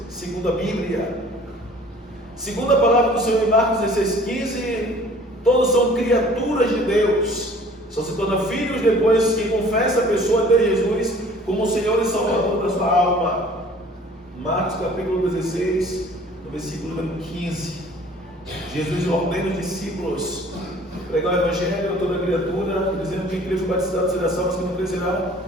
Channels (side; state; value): both; normal; correlation 0.51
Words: segundo a Bíblia. Segundo a palavra do Senhor em Marcos 16:15, todos são criaturas de Deus, só se tornam filhos depois que confessa a pessoa de Jesus como o Senhor e Salvador da sua alma. Marcos capítulo 16, no versículo número 15. Jesus ordena os discípulos pregar o Evangelho a toda criatura, dizendo que quem crê e batizado será salvo, mas quem não crê será